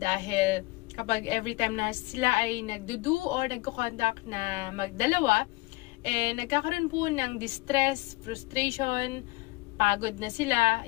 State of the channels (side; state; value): right; quieter; 22.5 dB